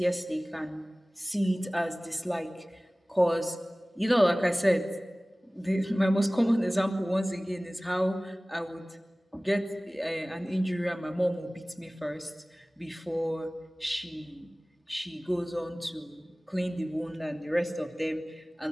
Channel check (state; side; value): normal; both; correlation 0.98